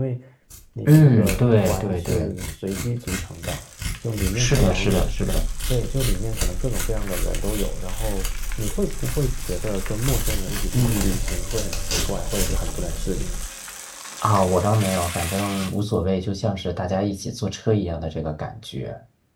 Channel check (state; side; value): identical; both; correlation 1.00